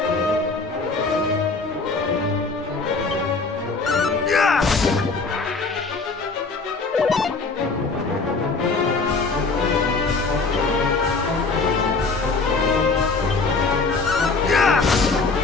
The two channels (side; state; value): right; quieter; 4.0 dB